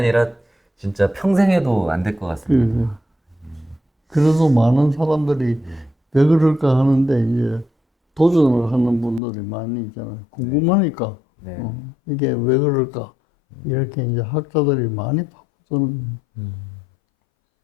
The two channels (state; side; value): drops out; right; at 9.2 s